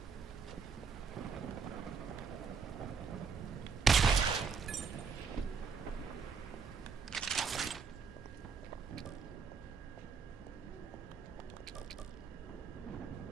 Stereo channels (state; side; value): quieter; left; 5.6 dB